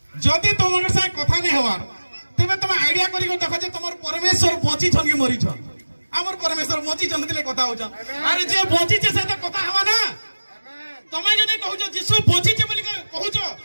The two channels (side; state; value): both; inverted; correlation -1.00